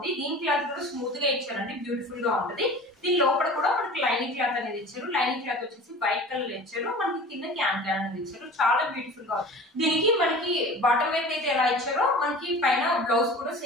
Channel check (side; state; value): both; normal; correlation 0.40